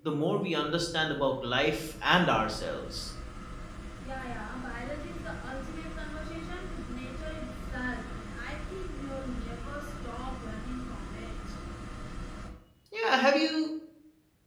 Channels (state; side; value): identical; both; correlation 1.00